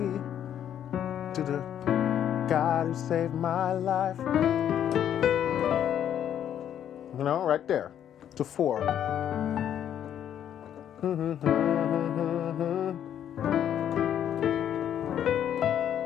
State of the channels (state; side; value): quieter; right; 10.0 dB